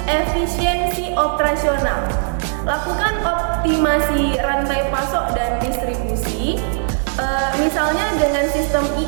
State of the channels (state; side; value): silent; left; 58 dB below the other